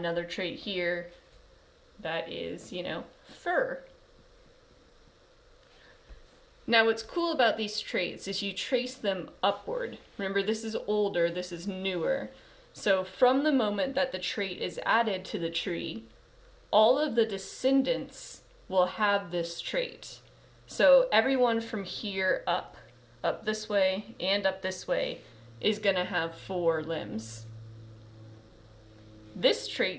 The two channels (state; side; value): identical; both; correlation 1.00